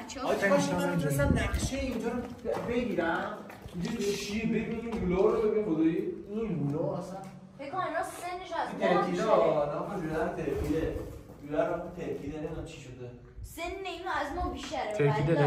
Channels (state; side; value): identical; both; correlation 1.00